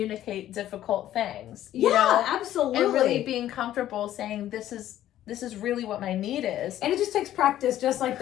difficult things. You know? Absolutely. And really being comfortable saying, this is really what my need is. And it just takes practice, just like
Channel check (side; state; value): right; quieter; 12.7 dB